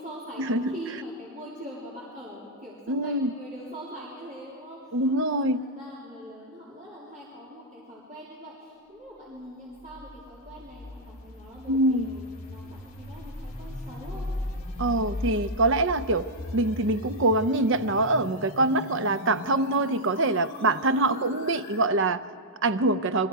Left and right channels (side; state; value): both; normal; correlation -0.07